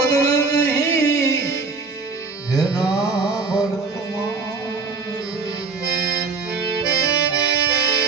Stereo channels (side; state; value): left; quieter; 4.4 dB